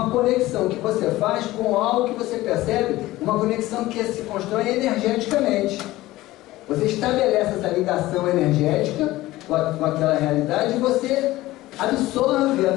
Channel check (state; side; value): quieter; right; 17.3 dB